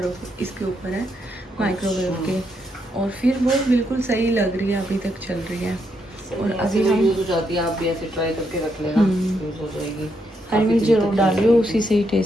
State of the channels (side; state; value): both; normal; correlation 0.78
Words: इसके ऊपर है माइक्रोवेव के, और फिर वो बिल्कुल सही लग रही है, अभी तक चल रही है। और अभी हम यूज हो जाती है, आप भी ऐसे ट्राई करके रख लेना, यूज हो जाएगी। हरी मिर्च जरूर डालियो, उसी से ही